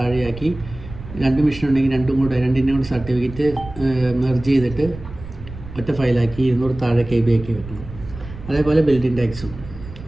2 മെഷീൻ ഉണ്ടെങ്കിൽ രണ്ടിൻ്റെ കൂടെ സർട്ടിഫിക്കറ്റ് മെർജ് ചെയ്തിട്ട് ഒറ്റ ഫയലാക്കി 200 താഴെ KB ആക്കി വെക്കണം. അതേപോലെ ബിൽഡിംഗ് ടാക്സും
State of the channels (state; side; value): noise; right; rumble, 14 dB below the sound